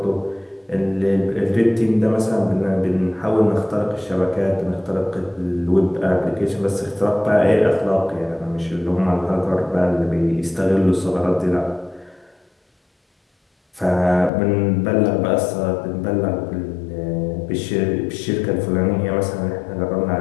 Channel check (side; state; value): right; drops out; at 14.3 s